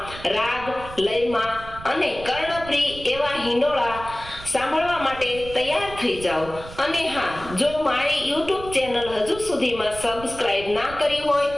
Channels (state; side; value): noise; right; rumble, 14 dB below the sound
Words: રાગ લયમાં અને કર્ણપ્રિય એવા હિંડોળા સાંભળવા માટે તૈયાર થઈ જાઓ। અને હા, જો મારી યુટ્યુબ ચેનલ હજુ સુધીમાં સબસ્ક્રાઇબ ના કરી હોય